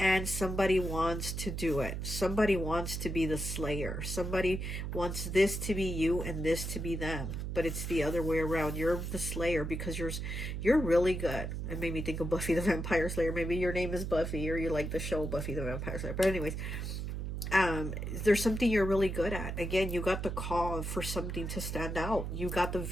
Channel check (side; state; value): right; noise; hum, 4 dB below the sound